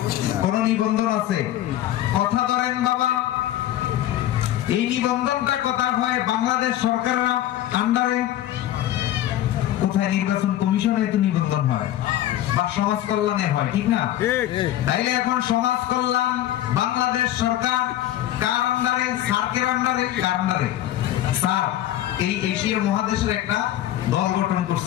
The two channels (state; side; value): quieter; right; 13.1 dB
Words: কোন নিবন্ধন আছে? কথা ধরেন বাবা, এই নিবন্ধনটা কথা হয় বাংলাদেশ সরকারের আন্ডারে। কোথায়? নির্বাচন কমিশনে তো নিবন্ধন হয় বা সমাজ কল্যাণে হয়, ঠিক না? তাইলে এখন সমাজ কল্যাণ বাংলাদেশ সরকার কার আন্ডারে? সার্কের আন্ডারে। কার আন্ডারে? স্যার এই এশিয়া মহাদেশের একটা দল গঠন